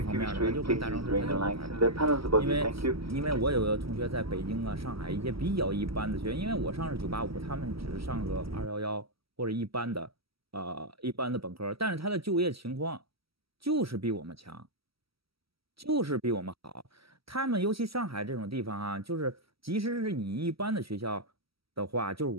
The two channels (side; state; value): left; late; 0.75 ms